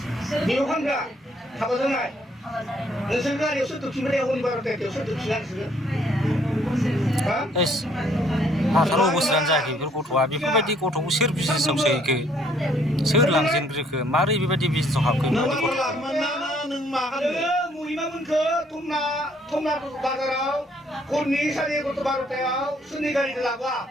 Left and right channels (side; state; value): both; normal; correlation 0.65